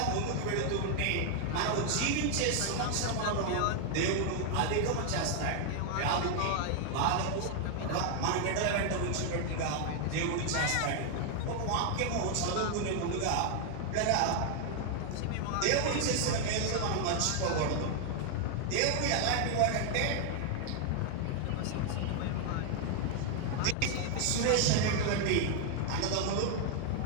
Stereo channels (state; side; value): different; both; correlation 0.00